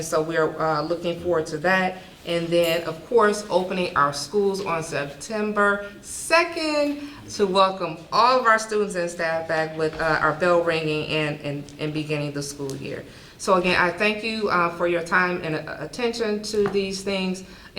so we're looking forward to that. And then, of course, opening our schools on September 2nd to welcome all of our students and staff back with our bell ringing and beginning the school year. So again, I thank you for your time and attention to these things.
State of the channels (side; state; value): both; identical; correlation 1.00